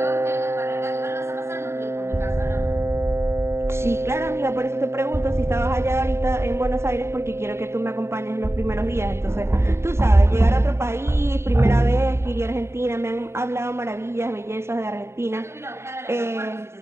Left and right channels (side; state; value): left; late; 0.13 ms